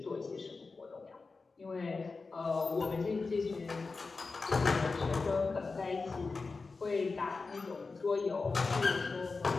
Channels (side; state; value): right; quieter; 4.1 dB